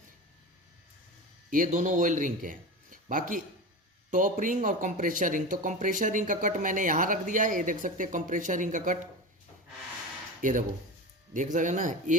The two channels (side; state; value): both; normal; correlation 0.26